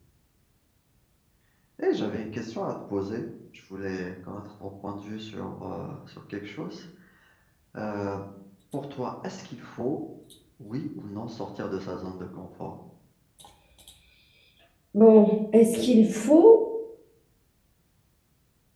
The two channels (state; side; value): identical; both; correlation 1.00